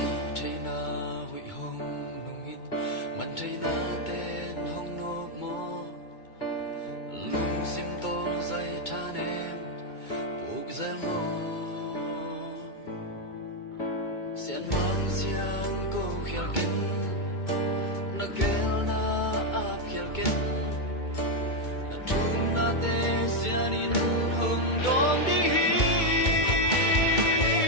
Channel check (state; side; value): late; right; 2.2 ms